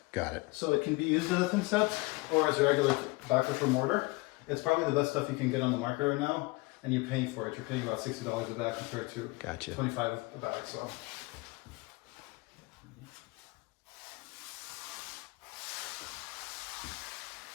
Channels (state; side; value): quieter; right; 24.9 dB